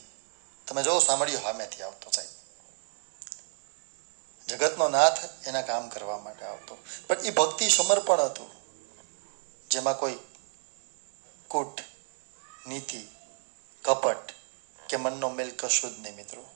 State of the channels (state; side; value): silent; left; digital silence